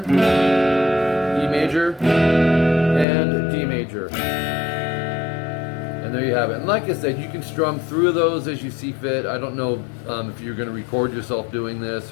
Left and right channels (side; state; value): right; drops out; at 3.1 s